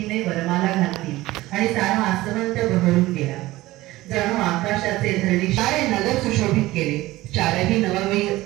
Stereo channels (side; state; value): left; quieter; 17.9 dB